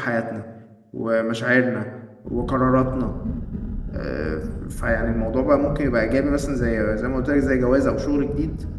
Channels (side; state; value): both; identical; correlation 1.00